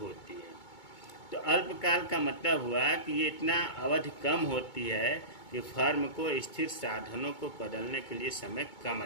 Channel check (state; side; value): late; right; 2.2 ms